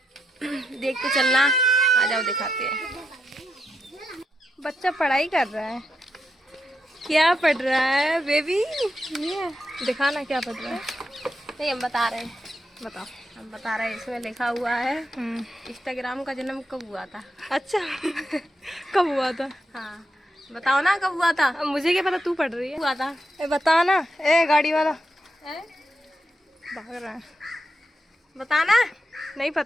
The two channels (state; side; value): normal; both; correlation 0.83